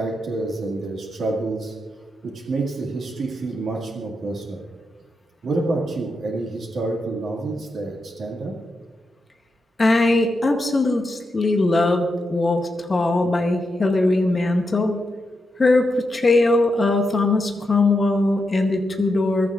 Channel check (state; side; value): normal; both; correlation 0.85